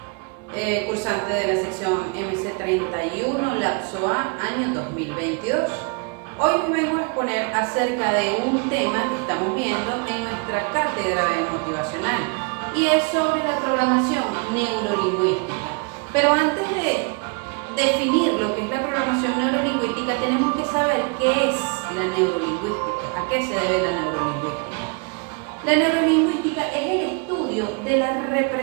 cursante de la sección MC31, lapso A, año 2022. Hoy vengo a exponer acerca de un tema que estamos viendo en nuestra cátedra de motivacional y es sobre la programación neurolingüística. Pero antes de definir lo que es la programación neurolingüística, tenemos que saber qué es la neurolingüística, a qué se debe la neurolingüística. La neurolingüística es el estudio de la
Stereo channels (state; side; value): quieter; left; 33.8 dB